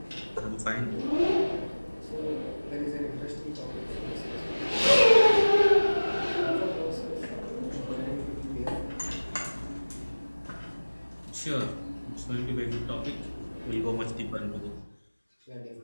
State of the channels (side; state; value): both; inverted; correlation -1.00